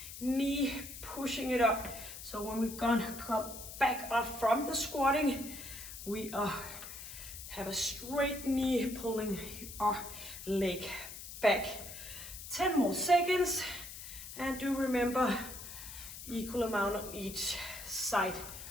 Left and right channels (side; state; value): left; noise; hiss, 11 dB below the sound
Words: knee, pushing it up. So when we're gonna come back up from the squatting, we have a straight knee pulling our leg back. 10 more seconds, and do remember equal amount on each side.